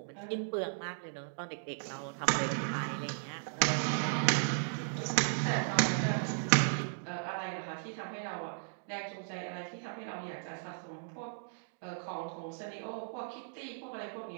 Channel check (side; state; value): left; silent; digital silence